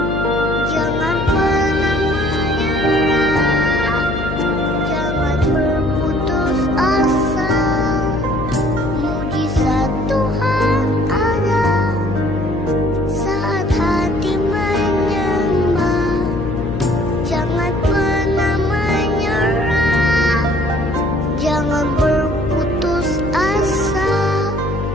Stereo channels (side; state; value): left; noise; hum, 5 dB below the sound